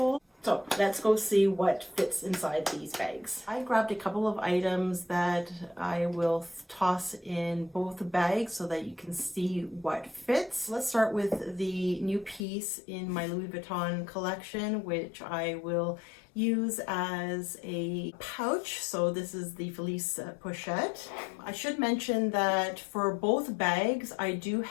So let's go see what fits inside these bags. I grabbed a couple of items that I will toss in both bags so that you can see what fits. Let's start with the new piece in my Louis Vuitton collection, which I will use as a pouch. So this is the Felice Pochette. I should mention that for both bags, I do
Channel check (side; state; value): right; drops out; at 12.5 s